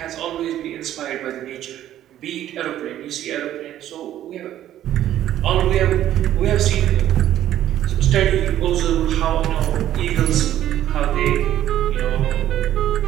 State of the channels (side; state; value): left; quieter; 12.2 dB